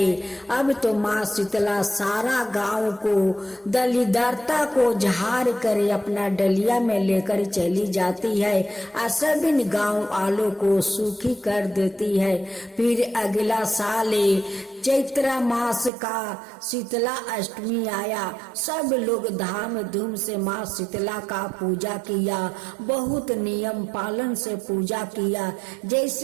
अब तो माँ शीतला सारा गांव को दलिदरता को झाड़ कर अपना डलिया में लेकर चली जाती है और सभी गांव वालों को सुखी कर देती है। फिर अगला साल चैत्र मास का शीतला अष्टमी आया। सब लोग धाम धूम से माँ शीतला का पूजा किया, बहुत नियम पालन से पूजा किया।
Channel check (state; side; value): drops out; left; at 15.9 s